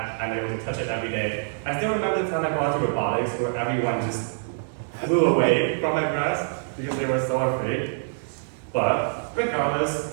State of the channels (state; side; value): silent; left; 62 dB below the other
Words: I'm able to touch it every day. I still remember the time I brought to robotics where everyone just flew away from my grass because they were so afraid. But